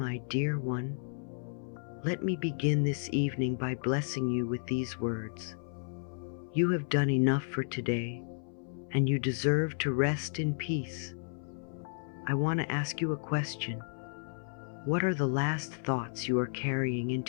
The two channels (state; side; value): silent; right; 56 dB below the other